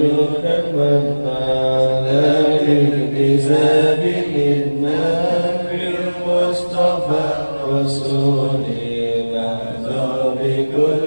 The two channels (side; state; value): both; inverted; correlation -1.00